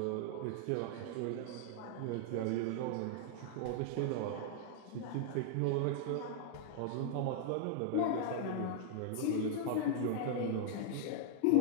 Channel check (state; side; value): different; both; correlation -0.01